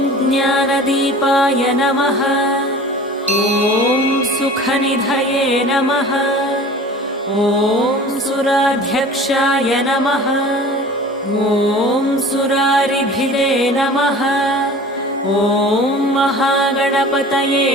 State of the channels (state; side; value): normal; both; correlation 0.41